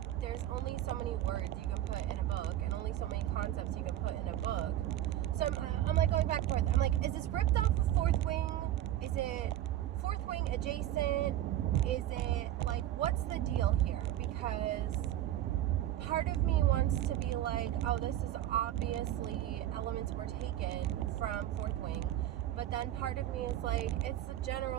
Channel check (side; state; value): left; quieter; 12.8 dB